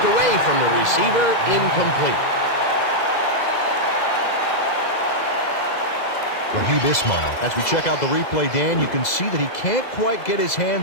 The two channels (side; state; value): right; late; 2.0 ms